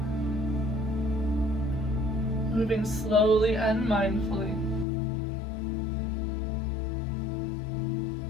moving slowly and mindfully.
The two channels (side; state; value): right; drops out; at 4.9 s